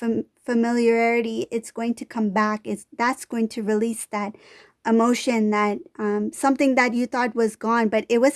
familiarity, it's going to come back. That's going to release that emotion, that something that you thought was gone, but it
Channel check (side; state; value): both; identical; correlation 1.00